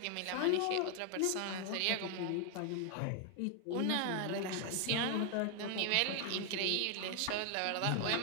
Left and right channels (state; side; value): different; both; correlation 0.00